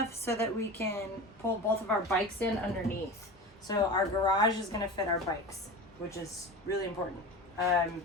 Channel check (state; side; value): normal; both; correlation 0.31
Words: so that we can pull both of our bikes in underneath. So our garage is gonna fit our bikes, which is really important.